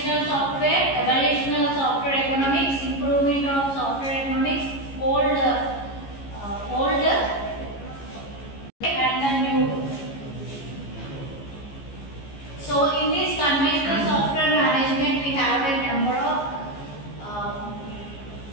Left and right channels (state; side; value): late; right; 15 ms